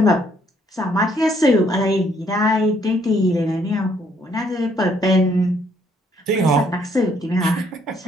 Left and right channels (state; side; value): normal; both; correlation 0.68